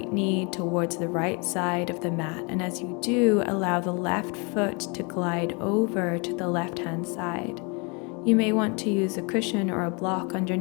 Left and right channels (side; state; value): right; quieter; 31.9 dB